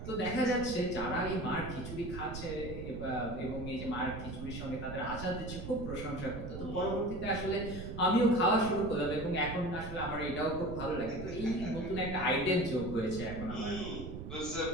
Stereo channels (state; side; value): noise; right; rumble, 8 dB below the sound